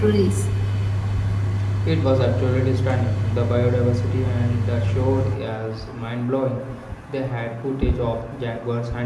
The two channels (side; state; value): both; identical; correlation 1.00